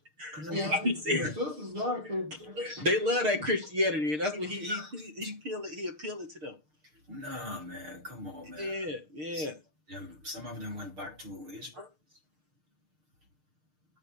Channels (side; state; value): left; late; 6.6 ms